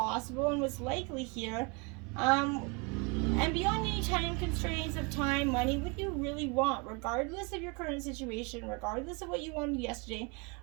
and what's likely here, and beyond any time constraints of time, money? What do you really want, regardless of your current situation, regardless of what you wanted yesterday?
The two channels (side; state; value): left; quieter; 30.6 dB